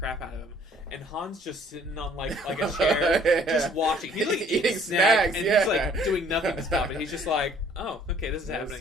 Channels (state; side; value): normal; both; correlation 0.58